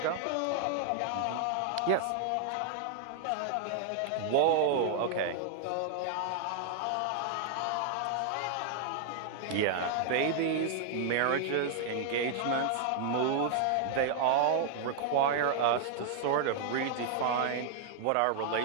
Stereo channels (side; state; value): both; different; correlation 0.00